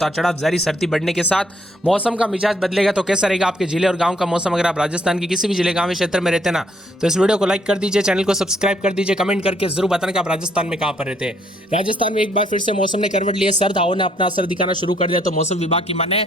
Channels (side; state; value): both; normal; correlation 0.68